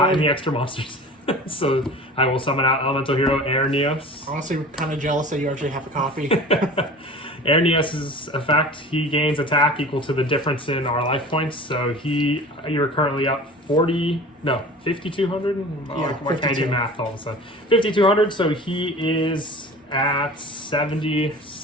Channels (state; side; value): normal; both; correlation 0.40